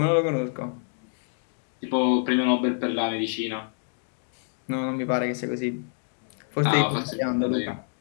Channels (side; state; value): right; silent; digital silence